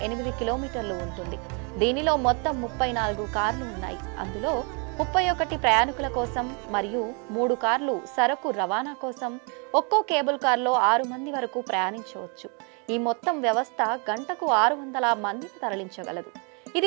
కిలోమీటర్లు ఉంటుంది. దీనిలో మొత్తం 34 కార్లు ఉన్నాయి. అందులో 31 ప్రయాణికుల కోసం మరియు 3 కార్లు సరకు రవాణా కోసం. ఒక్కో కేబుల్ కార్లో 6 మంది వరకు ప్రయాణించవచ్చు. ఈ మొత్తం వ్యవస్థ గంటకు 600 మందిని తరలించగలదు.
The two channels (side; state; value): left; quieter; 35.4 dB